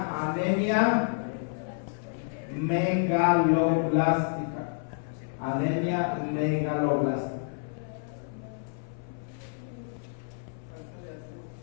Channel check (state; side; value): silent; right; 58 dB below the other